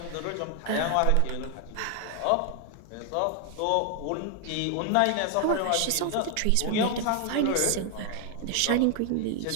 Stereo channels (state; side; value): different; both; correlation 0.00